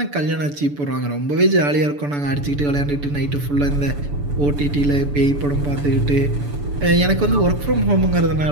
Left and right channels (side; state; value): left; late; 6.9 ms